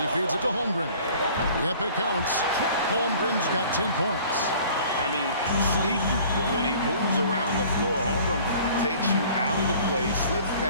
feeds it to Holmgren. Yep, it counts. Holmgren's got 10 points. I mean, sneaky, but when he moves around the floor, Holmgren takes you out of the play, slips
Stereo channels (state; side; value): inverted; both; correlation -0.50